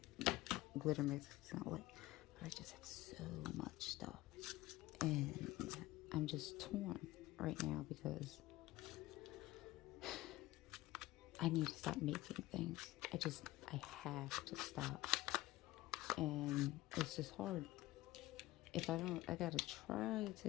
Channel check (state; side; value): quieter; right; 17.8 dB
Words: glitter mixes in a way. But I just have so much stuff, and I'm just torn right now because I need to stop making things. I have to stop, and it's just hard. If I don't, I gotta try